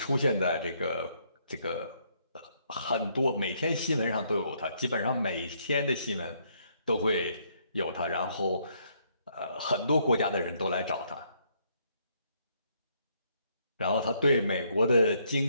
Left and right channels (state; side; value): inverted; both; correlation -0.71